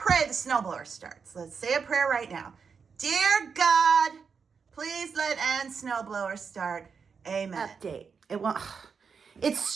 the snowblower starts. Let's say a prayer right now. Dear God, please let Ann's snowblower start. Amen. Update. It's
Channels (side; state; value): left; quieter; 5.8 dB